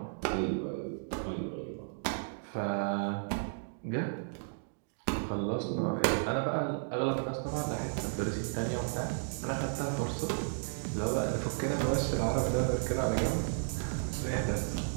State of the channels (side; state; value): left; silent; digital silence